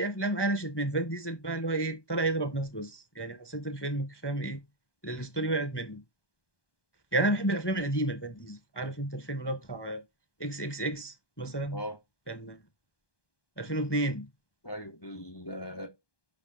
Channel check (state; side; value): late; right; 1.2 ms